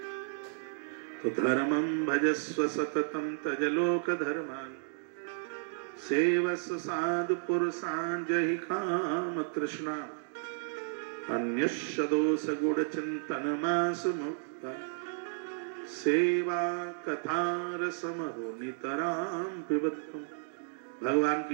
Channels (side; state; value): left; silent; digital silence